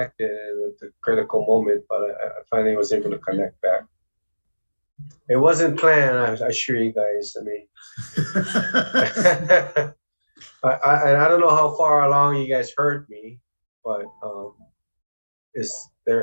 at the critical moment, but I finally was able to connect back. It wasn't planned, I assure you guys. I mean, I don't know how far along you guys heard me, but is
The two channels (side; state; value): both; inverted; correlation -1.00